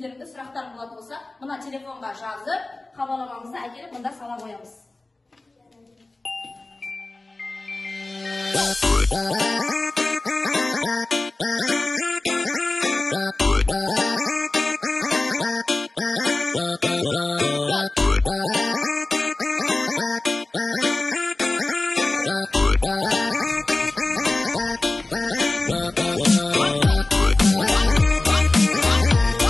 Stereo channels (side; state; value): right; quieter; 3.0 dB